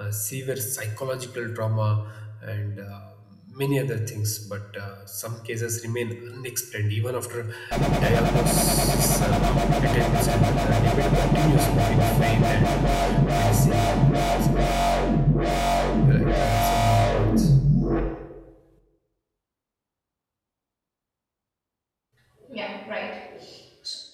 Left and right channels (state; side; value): identical; both; correlation 1.00